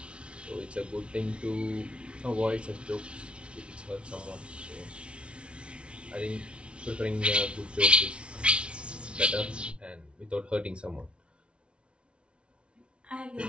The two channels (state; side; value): late; left; 0.059 ms